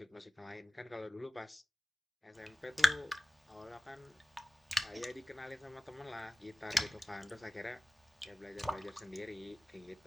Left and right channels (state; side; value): normal; both; correlation 0.98